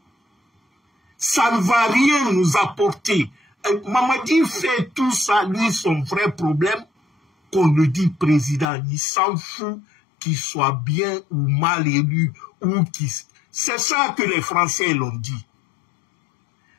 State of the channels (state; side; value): drops out; right; at 8.7 s